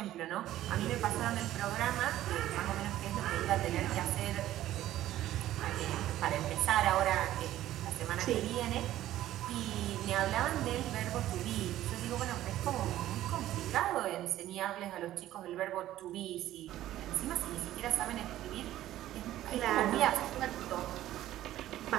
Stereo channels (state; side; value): quieter; left; 13.7 dB